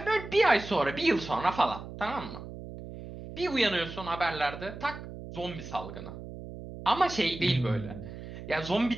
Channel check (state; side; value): noise; right; hum, 12 dB below the sound